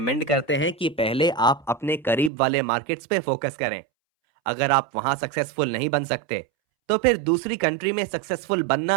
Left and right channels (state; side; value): drops out; left; at 2.3 s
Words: करते हैं कि पहले आप अपने करीब वाले मार्केट्स पे फोकस करें। अगर आप वहां सक्सेसफुल नहीं बन सकते तो फिर दूसरी कंट्री में सक्सेसफुल